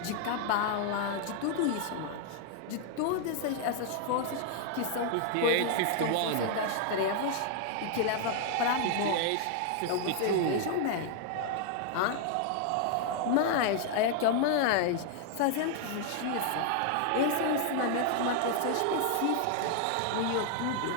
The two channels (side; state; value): both; different; correlation 0.00